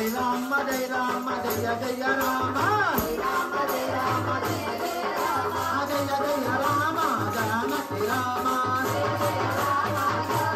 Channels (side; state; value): both; identical; correlation 1.00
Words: జయ రామ జయ జయ రామ జయ జయ రామ జానకి రామ